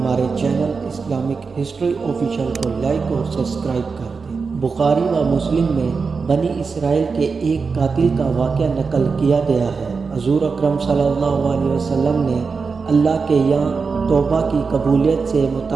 چینل اسلامک ہسٹری آفیشیل کو لائک اور سبسکرائب کر دیں۔ بخاری و مسلم میں بنی اسرائیل کے ایک قاتل کا واقعہ نقل کیا گیا ہے۔ حضور اکرم صلی اللہ علیہ وسلم نے اللہ کے یہاں توبہ کی قبولیت سے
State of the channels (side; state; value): left; quieter; 4.9 dB